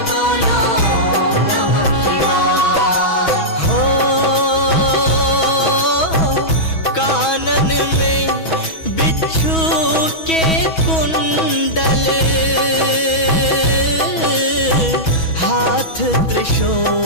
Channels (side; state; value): right; late; 6.2 ms